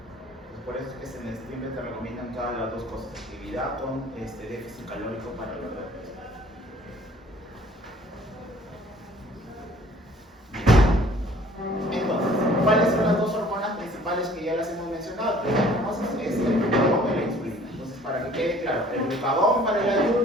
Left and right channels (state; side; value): normal; both; correlation 0.54